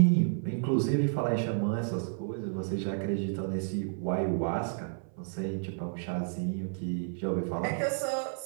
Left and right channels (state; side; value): silent; left; 57 dB below the other